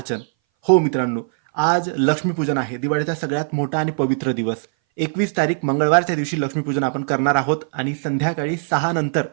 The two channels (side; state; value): left; silent; 60 dB below the other